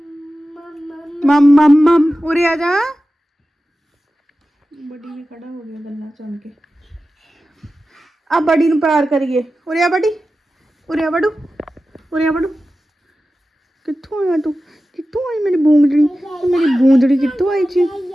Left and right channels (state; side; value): normal; both; correlation 0.94